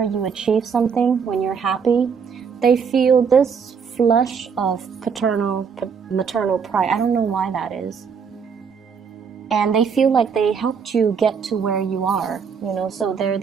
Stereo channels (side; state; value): left; quieter; 6.3 dB